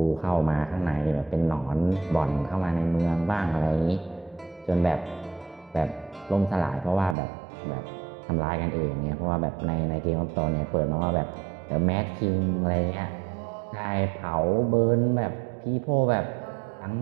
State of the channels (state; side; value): drops out; left; at 7.2 s